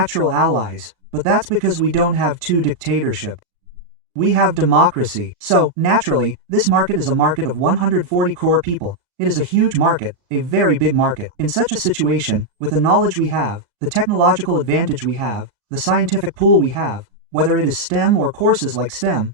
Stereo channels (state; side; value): late; left; 37 ms